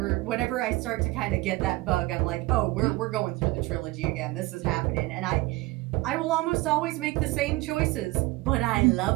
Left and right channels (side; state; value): left; quieter; 20.6 dB